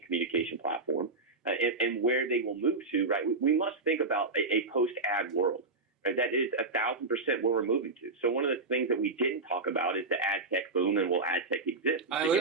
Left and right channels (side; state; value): left; quieter; 3.6 dB